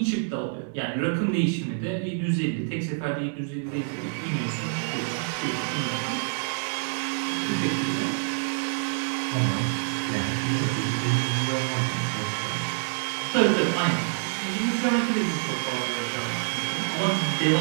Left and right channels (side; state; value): left; silent; digital silence